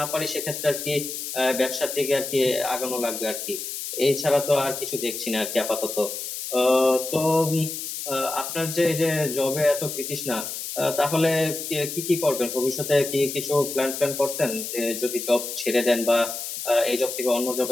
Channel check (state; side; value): noise; left; hiss, 6 dB below the sound